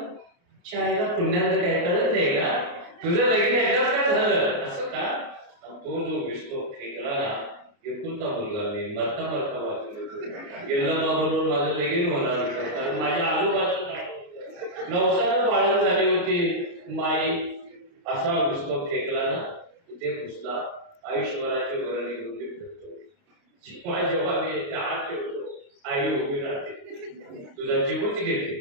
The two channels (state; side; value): late; left; 29 ms